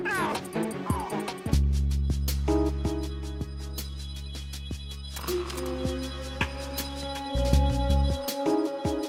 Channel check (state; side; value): identical; both; correlation 1.00